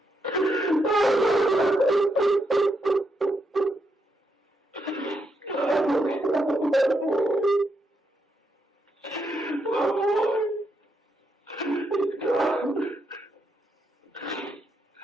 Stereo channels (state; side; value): normal; both; correlation 0.80